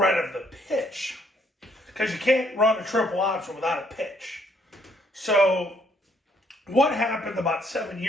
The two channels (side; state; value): both; normal; correlation 0.68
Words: of the pitch. Because you can't run a triple option without a pitch. So what happened about 7